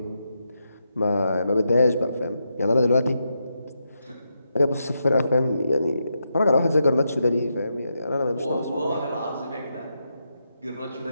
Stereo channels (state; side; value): inverted; both; correlation -0.84